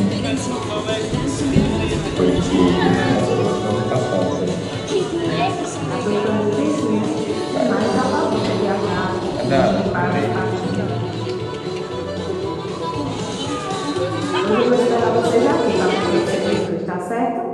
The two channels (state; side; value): identical; both; correlation 1.00